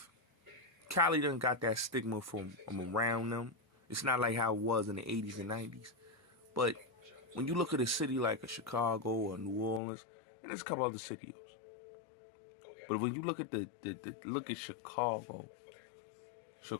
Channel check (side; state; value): right; drops out; at 9.8 s